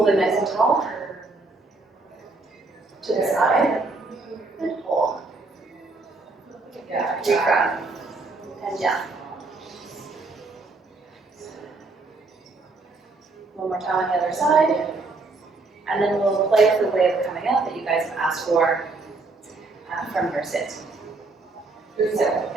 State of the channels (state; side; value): quieter; left; 3.5 dB